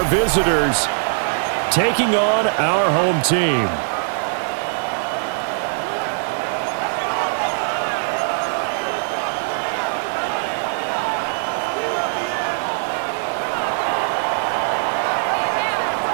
visitors taking on our home team.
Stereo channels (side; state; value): left; silent; 65 dB below the other